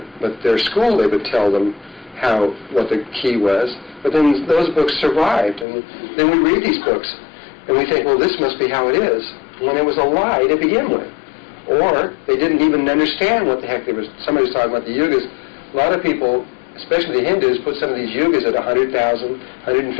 but their school, they would tell them what the key was. But then those books survived, and then we read these books. And we think, well, this must be how it is, when it was a lie to begin with. Or they didn't even understand what the heck they was. Somebody was talking about the yugas. A lot of people, especially the Hindus, put some of these yugas at 100,000,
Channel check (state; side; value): drops out; right; at 5.7 s